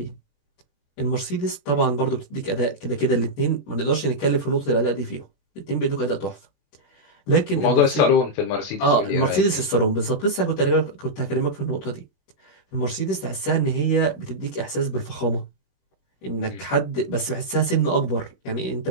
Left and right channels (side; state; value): right; late; 21 ms